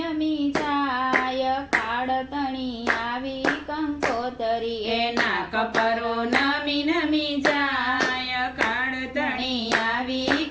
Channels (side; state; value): both; identical; correlation 1.00